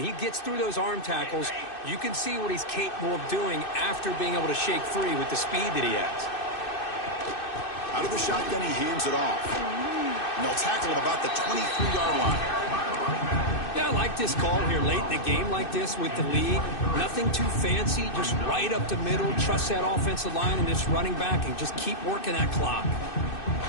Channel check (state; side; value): late; right; 2.6 ms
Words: he gets through those arm tackles. You can see what he's capable of doing after being able to shake free with the speed that he has. Out of the shotgun, he hands it off. And they'll tackle him about the 23-yard line. Yeah, I like this call here late in the game like this with the lead. Nothing too fancy, just right up the middle. Trust that offensive line and this running back and just keep working that clock.